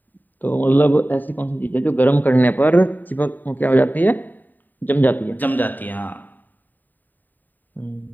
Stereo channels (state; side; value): late; right; 0.088 ms